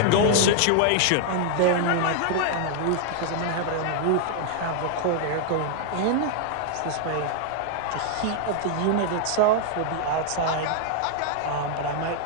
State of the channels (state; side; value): different; both; correlation 0.00